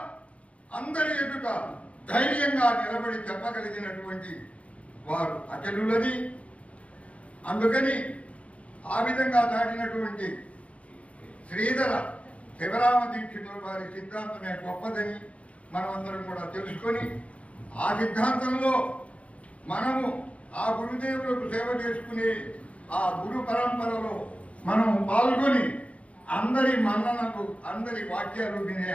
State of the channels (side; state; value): right; late; 0.064 ms